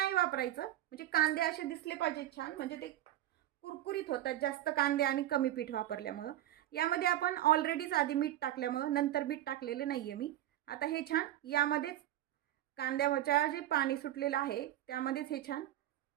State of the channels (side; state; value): left; quieter; 13.3 dB